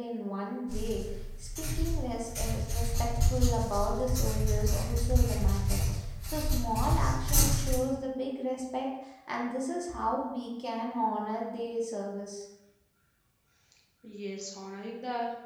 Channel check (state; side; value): identical; both; correlation 1.00